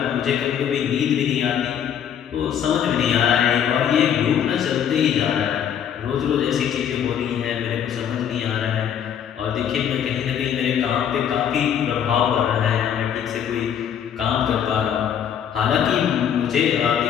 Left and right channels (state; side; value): quieter; right; 8.9 dB